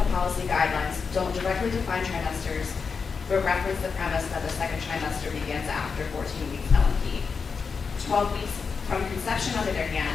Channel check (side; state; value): right; quieter; 5.4 dB